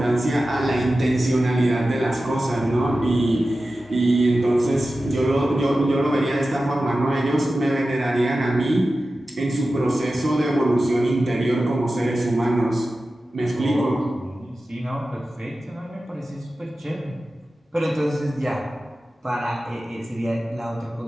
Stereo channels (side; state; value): both; normal; correlation 0.94